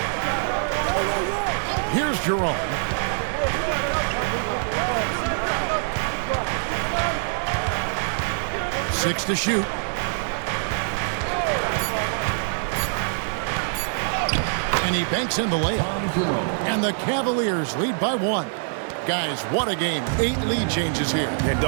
Here's Jerome. Six to shoot. And he banks in the layup. And the Cavaliers lead by 1. Guys, what a game. 8 lead changes here. And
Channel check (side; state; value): left; silent; digital silence